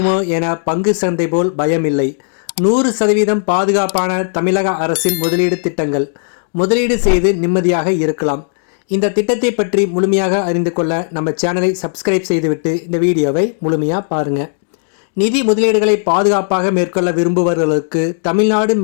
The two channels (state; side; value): silent; right; digital silence